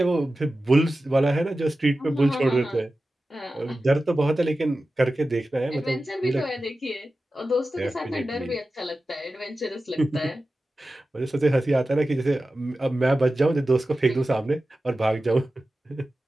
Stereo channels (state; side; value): normal; both; correlation 0.94